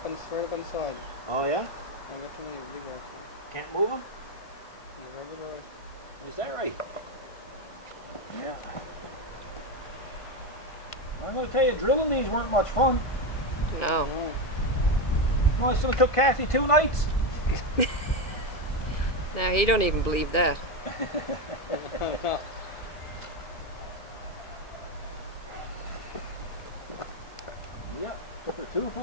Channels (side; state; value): right; late; 1.7 ms